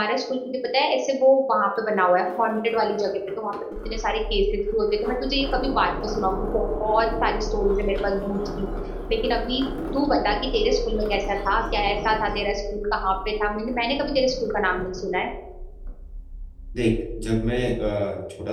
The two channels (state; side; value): identical; both; correlation 1.00